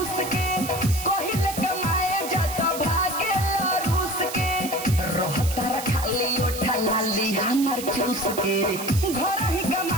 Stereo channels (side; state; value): right; noise; hiss, 9 dB below the sound